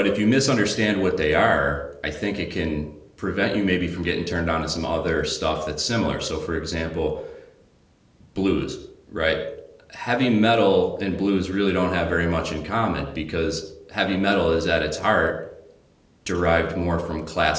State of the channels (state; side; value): identical; both; correlation 1.00